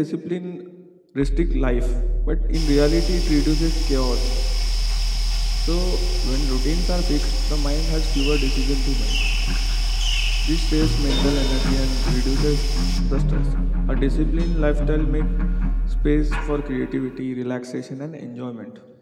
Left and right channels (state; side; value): identical; both; correlation 1.00